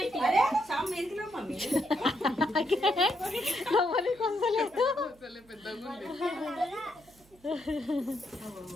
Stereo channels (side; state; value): right; noise; hum, 28 dB below the sound